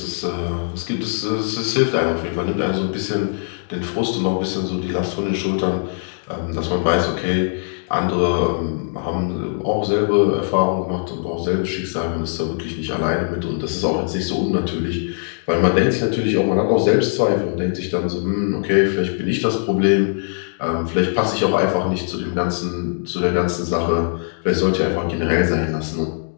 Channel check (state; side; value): silent; right; digital silence